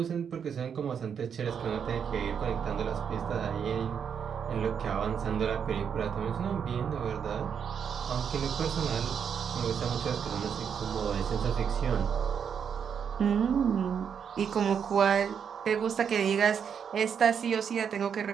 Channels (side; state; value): left; quieter; 7.4 dB